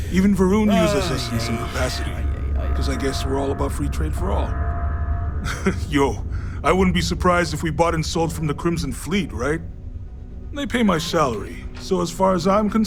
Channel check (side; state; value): both; identical; correlation 1.00